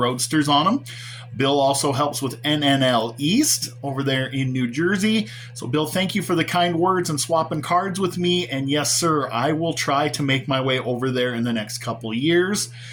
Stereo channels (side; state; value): both; identical; correlation 1.00